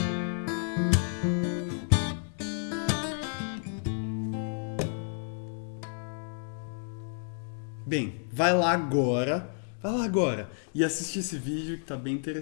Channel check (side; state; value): right; silent; digital silence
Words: Bem, vai lá agora e assiste esse vídeo que tá bem